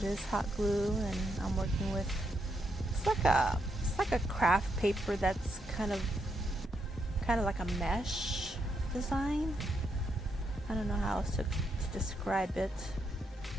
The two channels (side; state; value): both; normal; correlation 0.80